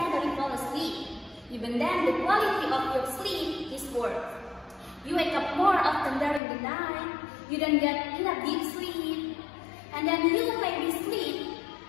fall asleep. Even then, the quality of your sleep is poor. You wake up more often during the night, you don't get enough deep sleep, and then you maybe sleep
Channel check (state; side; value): drops out; right; at 6.4 s